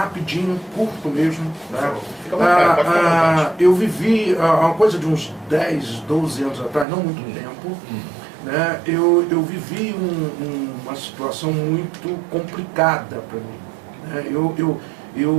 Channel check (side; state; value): left; drops out; at 6.9 s